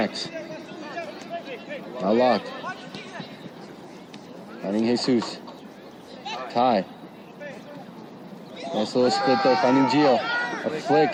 Now Locke. Finding Jesus. Ty. Nice little split there, finding Gio. A flick.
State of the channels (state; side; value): identical; both; correlation 1.00